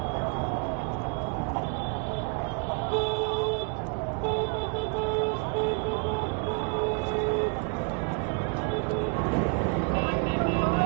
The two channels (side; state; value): left; quieter; 36.3 dB